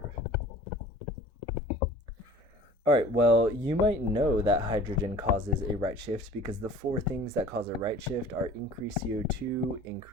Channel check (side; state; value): both; normal; correlation 0.46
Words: All right, well, you might know that hydrogen causes a right shift because the four things that cause a right shift are increased CO2,